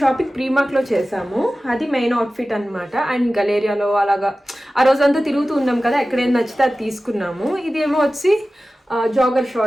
షాపింగ్ ప్రీమార్క్ లో చేసాము, అది మెయిన్ అవుట్ఫిట్ అనమాట. అండ్ గలేరియాలో అలాగా ఆ రోజంతా తిరుగుతూ ఉన్నాం కదా, ఎక్కడేం నచ్చితే అది తీసుకున్నాము. ఇదేమో వచ్చి జాగర్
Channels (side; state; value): both; normal; correlation 0.96